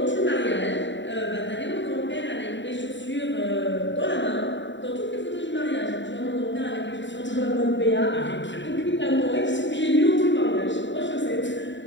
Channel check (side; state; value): right; late; 0.53 ms